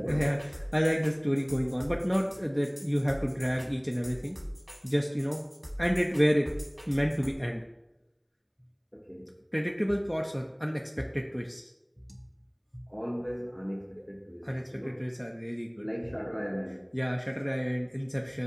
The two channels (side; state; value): both; identical; correlation 1.00